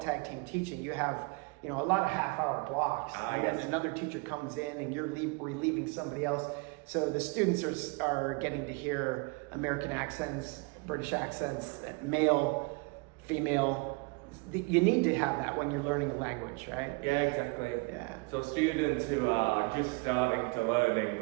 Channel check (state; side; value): quieter; left; 28.8 dB